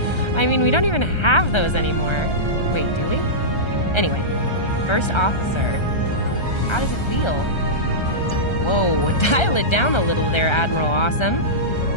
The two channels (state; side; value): late; right; 1.3 ms